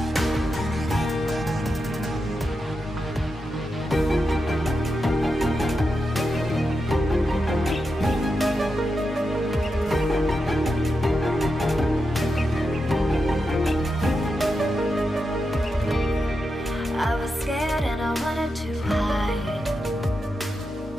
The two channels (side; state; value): both; normal; correlation 0.87